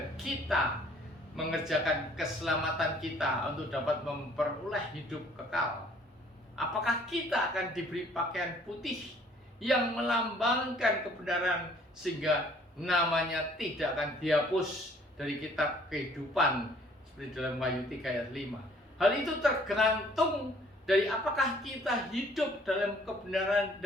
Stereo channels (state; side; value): normal; both; correlation 0.59